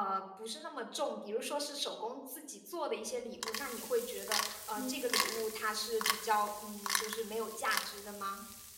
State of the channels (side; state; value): both; identical; correlation 1.00